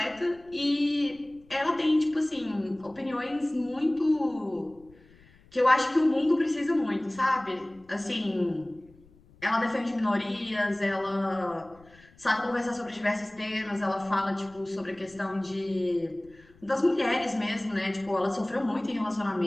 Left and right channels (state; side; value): noise; left; rumble, 27 dB below the sound